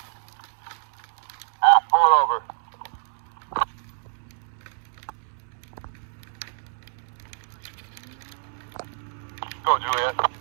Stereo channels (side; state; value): left; silent; digital silence